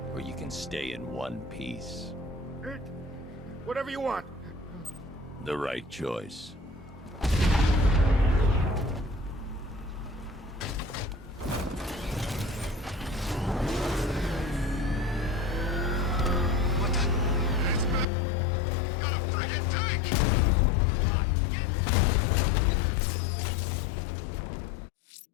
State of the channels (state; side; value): drops out; right; at 18.1 s